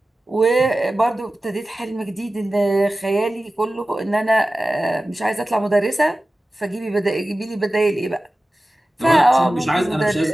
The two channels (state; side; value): normal; both; correlation 0.95